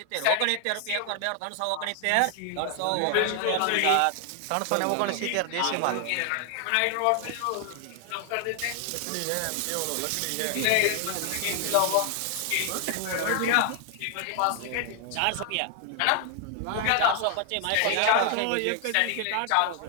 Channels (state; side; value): different; both; correlation 0.00